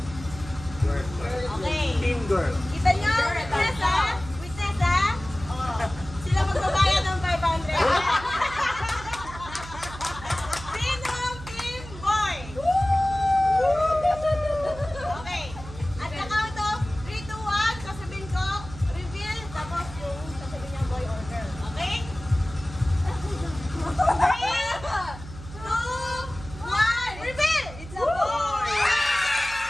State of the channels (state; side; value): noise; right; hum, 14 dB below the sound